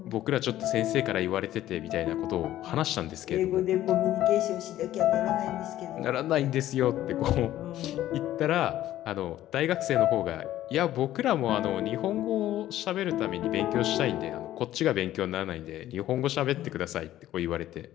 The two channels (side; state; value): right; quieter; 13.5 dB